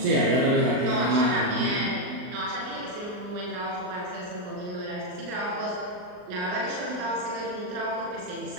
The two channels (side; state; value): left; late; 39 ms